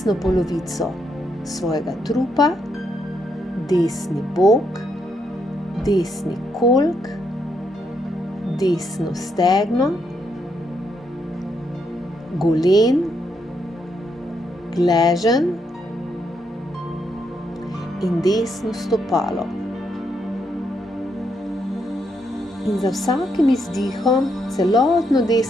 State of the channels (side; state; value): both; normal; correlation 0.78